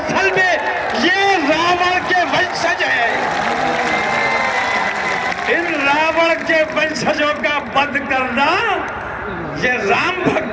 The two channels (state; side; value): identical; both; correlation 1.00